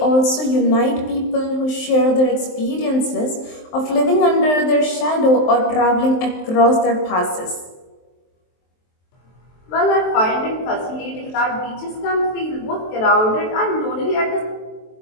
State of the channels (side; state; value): right; late; 23 ms